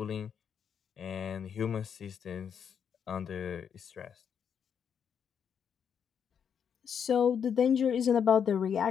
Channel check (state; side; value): quieter; right; 7.6 dB